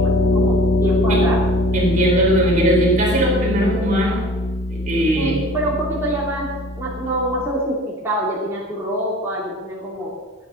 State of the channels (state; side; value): normal; both; correlation 0.45